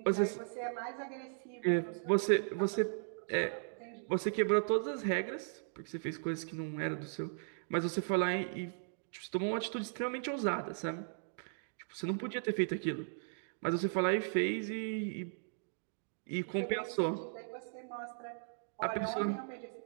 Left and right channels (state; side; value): silent; left; digital silence